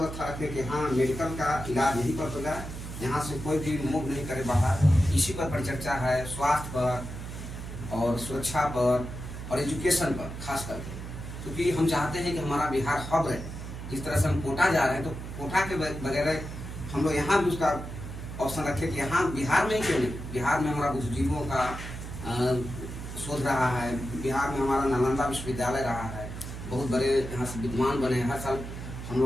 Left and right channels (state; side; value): noise; right; hum, 9 dB below the sound